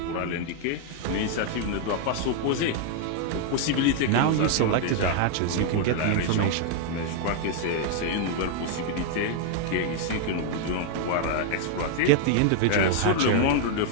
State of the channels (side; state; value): both; different; correlation 0.00